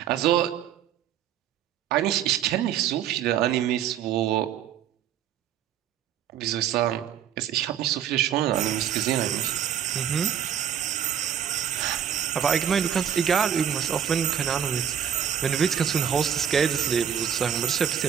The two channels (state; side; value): quieter; left; 9.1 dB